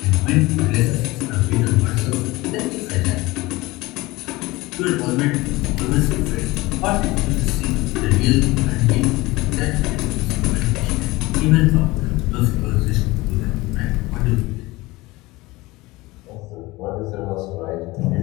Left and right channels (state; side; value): quieter; right; 20.9 dB